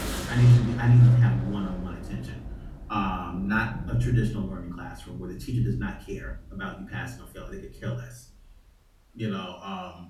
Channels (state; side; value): identical; both; correlation 1.00